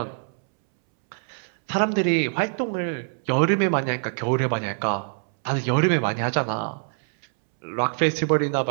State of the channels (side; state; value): left; silent; 62 dB below the other